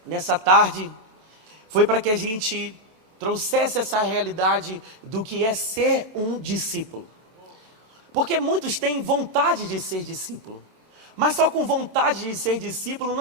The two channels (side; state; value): left; late; 27 ms